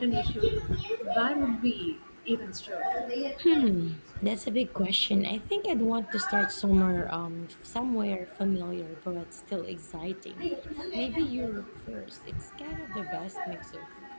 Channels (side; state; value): both; inverted; correlation -1.00